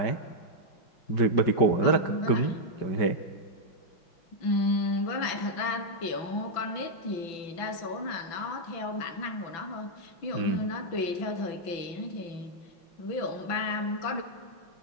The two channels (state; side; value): late; right; 6.0 ms